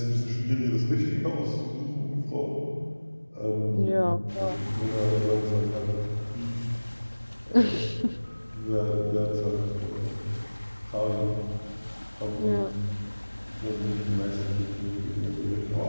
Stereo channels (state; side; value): inverted; both; correlation -1.00